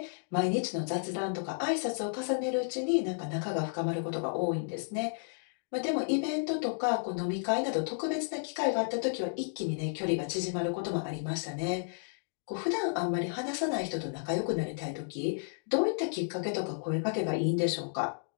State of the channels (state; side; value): silent; right; digital silence